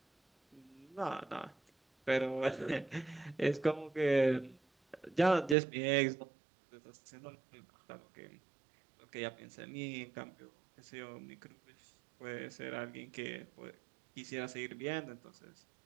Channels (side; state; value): left; drops out; at 5.6 s